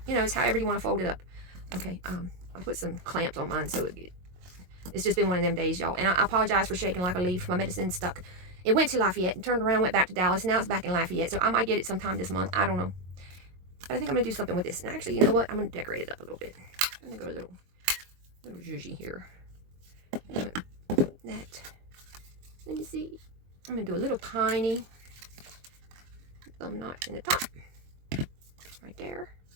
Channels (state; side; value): late; left; 22 ms